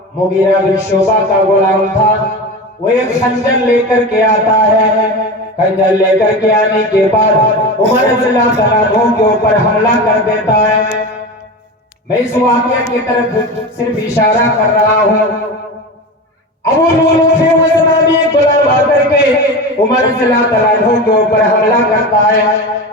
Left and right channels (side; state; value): both; normal; correlation 0.26